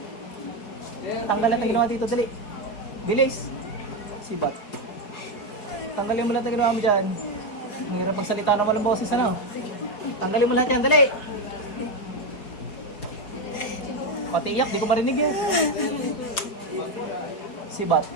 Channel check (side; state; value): right; late; 4.7 ms